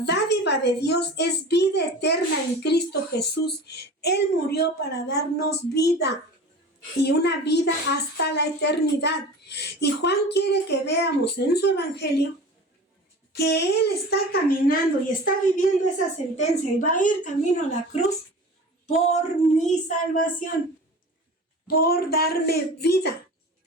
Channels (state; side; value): normal; both; correlation 0.37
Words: dádiva de Dios es vida eterna en Cristo Jesús. Él murió para darnos vida, y una vida hasta la eternidad. Y Juan quiere que veamos en su evangelio que Él está caminando y está viviendo esa sentencia y va a ir camino a la cruz por mi salvación, por darme vida.